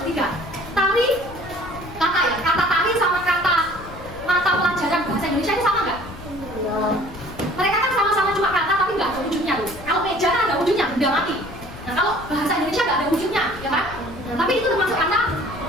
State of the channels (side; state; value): left; noise; rumble, 15 dB below the sound